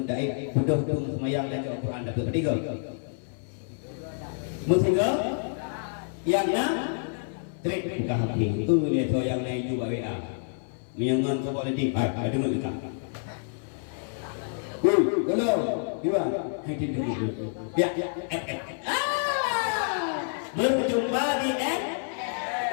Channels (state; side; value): silent; right; 55 dB below the other